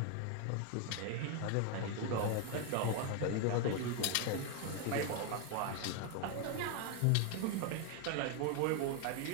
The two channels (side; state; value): both; different; correlation 0.01